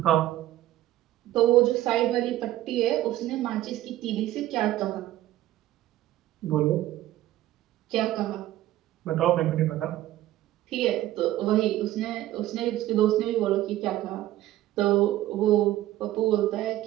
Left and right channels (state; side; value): quieter; left; 14.5 dB